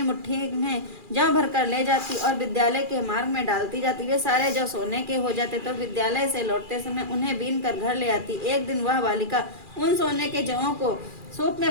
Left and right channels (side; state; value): left; late; 2.4 ms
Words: मुट्ठी में जौ भर कर ले जाती और विद्यालय के मार्ग में डालती जाती। वे सारे जौ सोने के हो जाते तो विद्यालय से लौटते समय उन्हें बीन कर घर ले आती। एक दिन वह बालिका उन सोने के जौं को सूप में